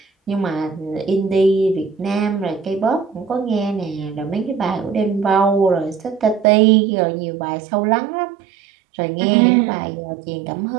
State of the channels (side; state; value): left; drops out; at 6.5 s